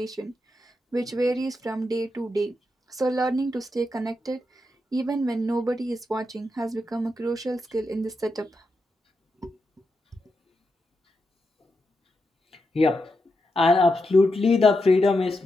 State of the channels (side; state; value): both; normal; correlation 0.85